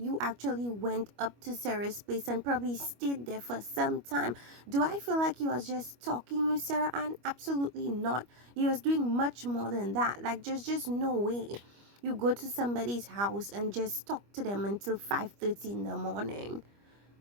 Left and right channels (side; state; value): left; late; 25 ms